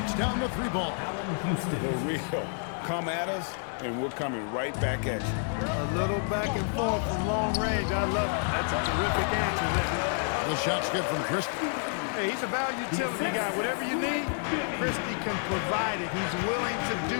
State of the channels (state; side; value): silent; right; 56 dB below the other